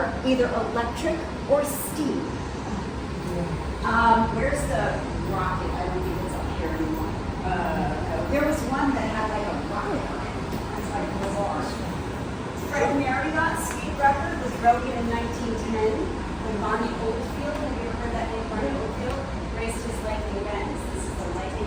either electric or steam. Where's the rocket? I don't think it's up here anymore. There was one that had like a rocket on it. It's like bizarre. Fred Marriott speed record was broken in 1910 when Bonnie Oldfield, have you ever heard that name, Bonnie Oldfield, raced his lightning Benz. This is the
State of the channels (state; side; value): identical; both; correlation 1.00